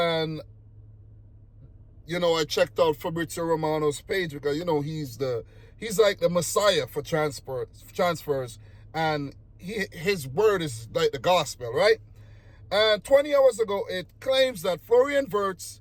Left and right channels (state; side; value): identical; both; correlation 1.00